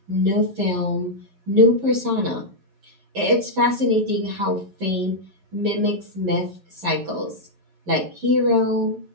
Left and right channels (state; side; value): late; left; 11 ms